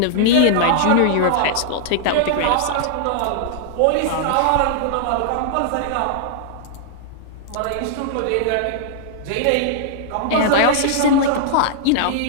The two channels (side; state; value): both; different; correlation -0.01